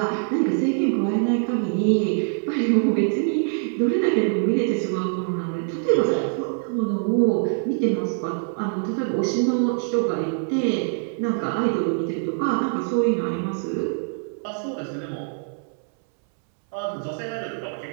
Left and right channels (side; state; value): left; silent; 63 dB below the other